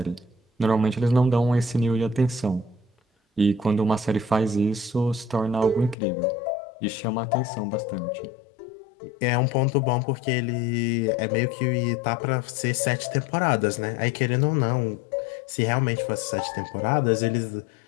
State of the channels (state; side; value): drops out; right; at 6.0 s